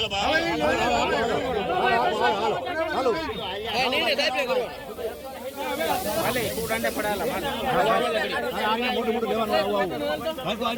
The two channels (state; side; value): identical; both; correlation 1.00